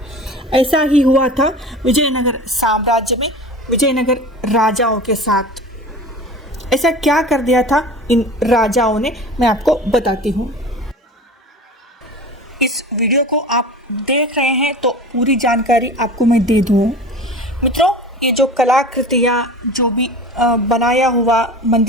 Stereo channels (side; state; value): both; normal; correlation 0.36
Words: ऐसा ही हुआ था विजयनगर साम्राज्य में विजयनगर राजाओं के साथ। ऐसा क्या कर दिया था इन राजाओं ने, मैं आपको बताती हूँ। इस वीडियो को आप देख रहे हैं तो पूरी जानकारी आपको मैं दे दूँ। मित्रों, ये जो कलाकृतियाँ जो भी बनाया हुआ